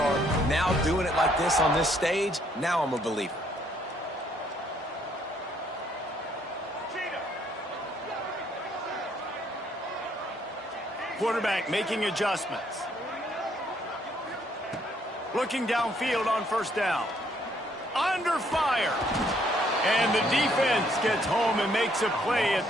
Now doing it like this on this stage, now I'm a believer. Quarterback making adjustments. Looking downfield on 1st down. Under fire. And the defense gets home and makes a play at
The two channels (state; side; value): normal; both; correlation 0.68